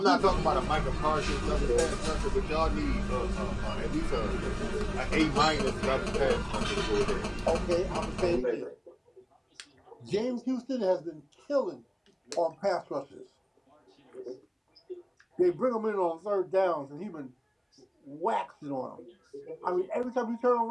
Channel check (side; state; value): both; identical; correlation 1.00